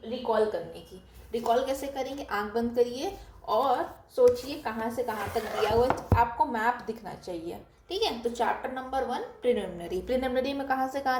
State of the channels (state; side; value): identical; both; correlation 1.00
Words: रिकॉल करने की। रिकॉल कैसे करेंगे, आंख बंद करिए और सोचिए कहाँ से कहाँ तक दिया हुआ है, आपको मैप दिखना चाहिए, ठीक है। तो चैप्टर नंबर 1 प्रिलिमिनरी में कहाँ से